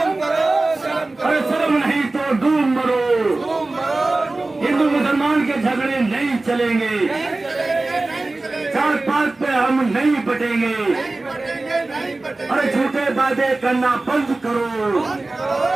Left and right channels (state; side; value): quieter; left; 3.1 dB